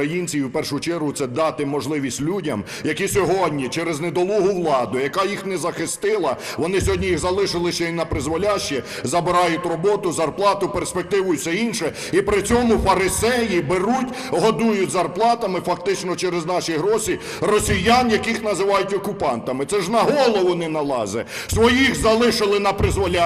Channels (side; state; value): both; identical; correlation 1.00